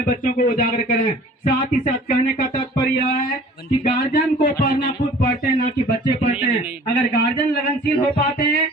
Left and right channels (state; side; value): normal; both; correlation 0.47